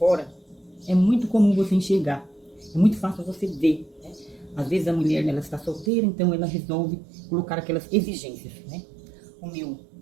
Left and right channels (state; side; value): drops out; left; at 5.9 s